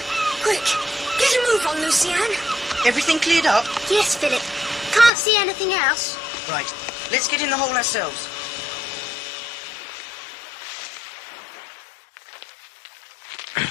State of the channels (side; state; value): right; drops out; at 5.1 s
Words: Quick, get a move on, Lucienne. Everything cleared up? Yes, Philip. Can't see anything else. Right, let's get in the hole ourselves.